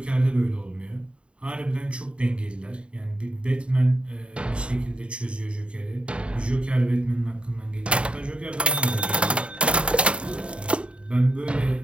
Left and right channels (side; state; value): left; late; 0.057 ms